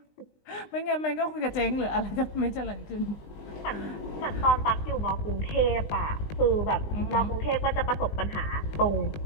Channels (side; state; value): right; late; 20 ms